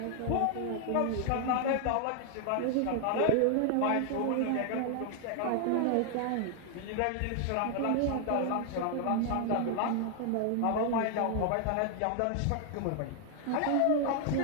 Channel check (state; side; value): different; both; correlation 0.00